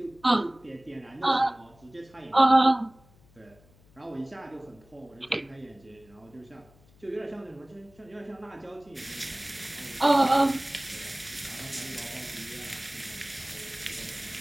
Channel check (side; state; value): left; noise; hum, 28 dB below the sound